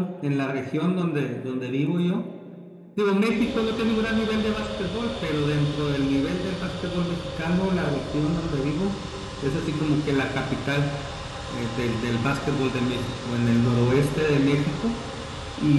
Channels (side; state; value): both; identical; correlation 1.00